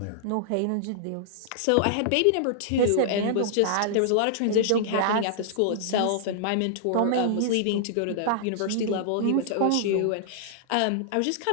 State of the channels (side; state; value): both; different; correlation -0.01